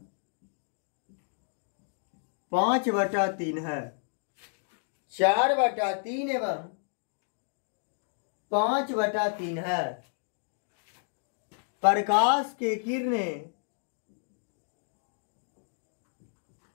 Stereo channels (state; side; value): silent; right; digital silence